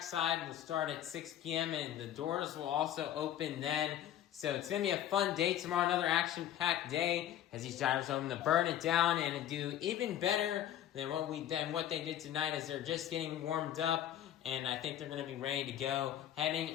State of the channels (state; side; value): quieter; right; 11.4 dB